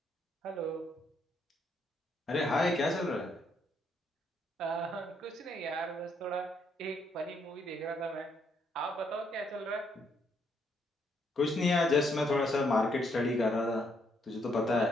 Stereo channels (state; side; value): normal; both; correlation 0.73